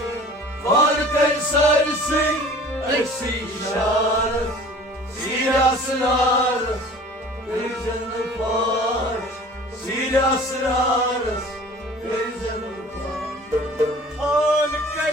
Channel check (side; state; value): both; normal; correlation 0.45